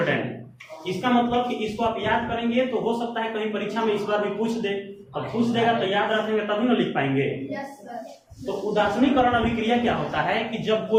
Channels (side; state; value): both; identical; correlation 1.00